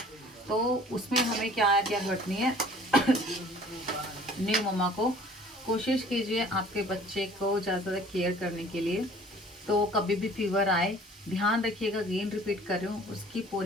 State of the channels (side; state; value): both; normal; correlation 0.51